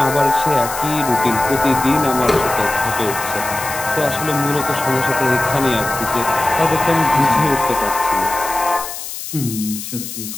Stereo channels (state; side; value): noise; left; hiss, 8 dB below the sound